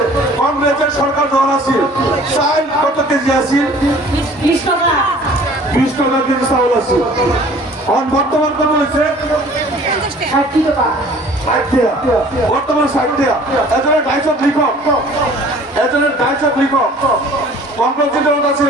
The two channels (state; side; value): normal; both; correlation 0.50